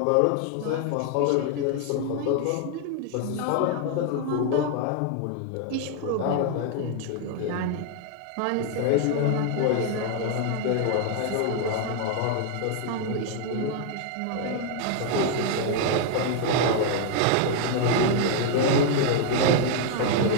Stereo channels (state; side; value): different; both; correlation 0.00